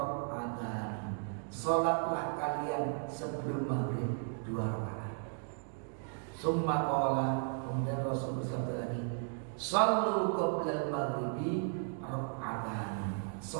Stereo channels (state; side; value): silent; left; 54 dB below the other